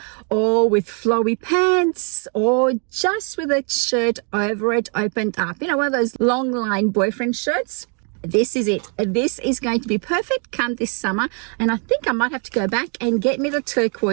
or with flowy pants or just with a shirt over it opened up. You know, one of those long line boyfriend shirts. This is it. This is going to be perfect come this summer, and I think I might have to go back and get me the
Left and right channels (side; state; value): left; quieter; 39.4 dB